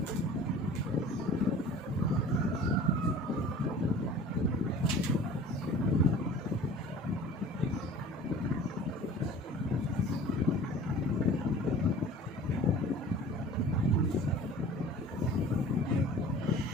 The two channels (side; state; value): both; normal; correlation 0.44